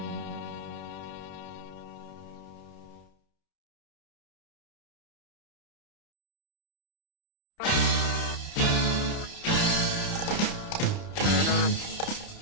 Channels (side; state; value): right; late; 30 ms